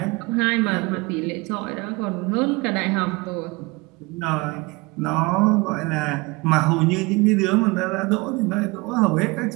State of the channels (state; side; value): quieter; left; 24.7 dB